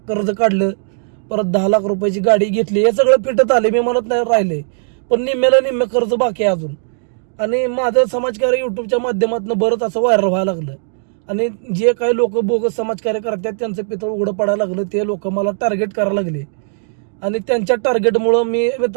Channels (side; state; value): left; silent; digital silence